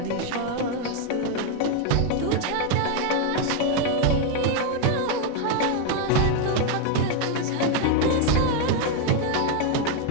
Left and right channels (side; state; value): both; different; correlation 0.01